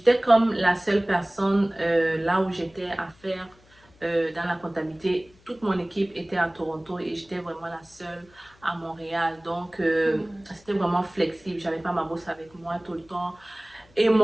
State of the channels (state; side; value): noise; left; hum, 29 dB below the sound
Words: comme la seule personne là où j'étais à faire dans la comptabilité. Toute mon équipe était à Toronto et j'étais vraiment la seule à Montréal. Donc, c'était vraiment flexible. J'avais pas ma bosse avec moi tout le temps. Et